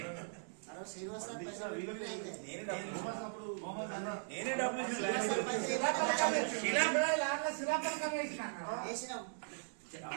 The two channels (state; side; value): silent; left; digital silence